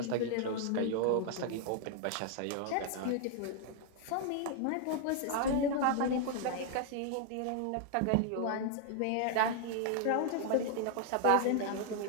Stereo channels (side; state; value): both; different; correlation 0.00